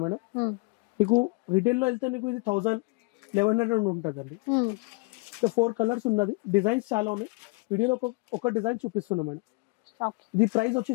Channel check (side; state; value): right; quieter; 27.5 dB